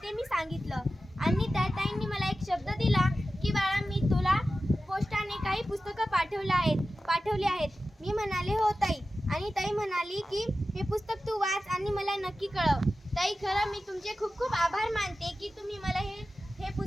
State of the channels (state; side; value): normal; both; correlation 0.94